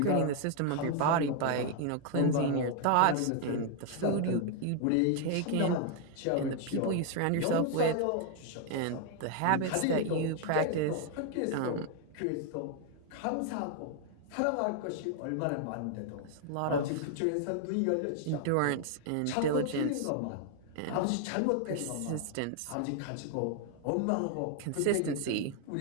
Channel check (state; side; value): different; both; correlation 0.00